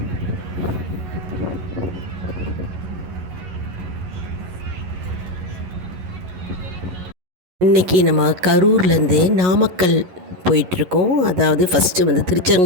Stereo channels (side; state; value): left; late; 11 ms